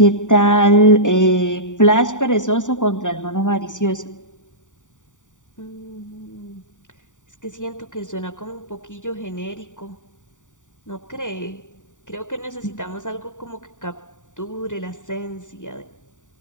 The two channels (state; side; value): late; right; 0.86 ms